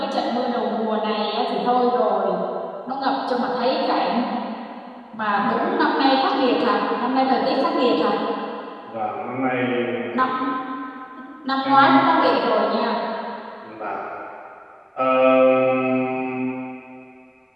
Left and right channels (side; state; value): both; identical; correlation 1.00